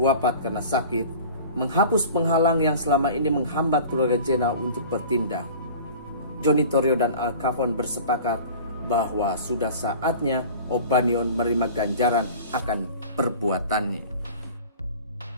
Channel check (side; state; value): both; inverted; correlation -0.41